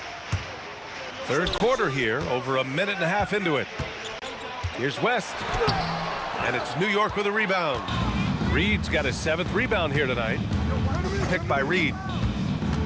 Third quarter here, over a minute and a half into it. Here's West. And it's New York with a rebound. Reed's got his 7th rebound here tonight. Picked by Reed.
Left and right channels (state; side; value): identical; both; correlation 1.00